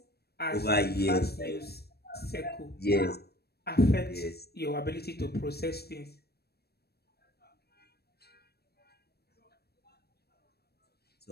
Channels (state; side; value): late; right; 0.47 ms